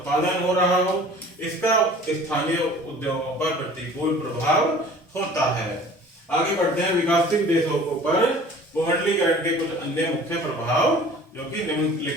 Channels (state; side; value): normal; both; correlation 0.46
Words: हो रहा हो। इसका स्थानीय उद्योगों पर प्रतिकूल प्रभाव होता है। आगे बढ़ते हैं विकासशील देशों पर भूमंडलीकरण के कुछ अन्य मुख्य प्रभाव जो कि